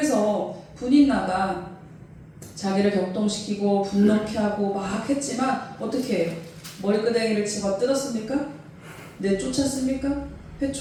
분인나가 자기를 격동시키고 분노케 하고 막 했지만 어떻게 해요? 머리끄댕이를 집어 뜯었습니까? 내쫓았습니까?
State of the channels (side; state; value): both; identical; correlation 1.00